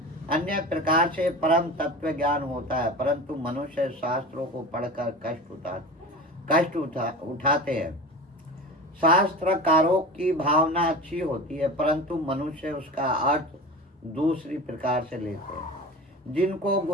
अन्य प्रकार से परम तत्व ज्ञान होता है, परंतु मनुष्य शास्त्रों को पढ़कर कष्ट उठाते हैं। शास्त्रकारों की भावना अच्छी होती है, परंतु मनुष्य उसका अर्थ दूसरी प्रकार से लेते हैं। जिनको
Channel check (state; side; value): normal; both; correlation 0.31